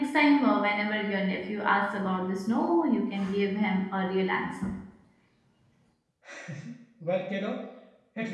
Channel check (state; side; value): identical; both; correlation 1.00